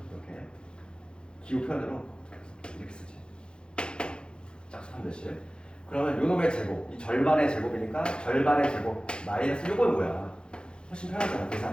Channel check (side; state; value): right; late; 0.051 ms